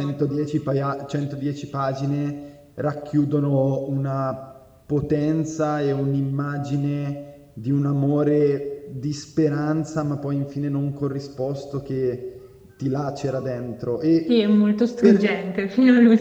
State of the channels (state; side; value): identical; both; correlation 1.00